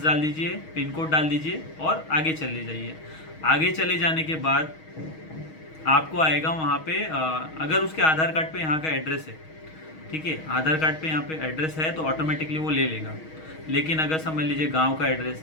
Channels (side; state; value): right; late; 6.3 ms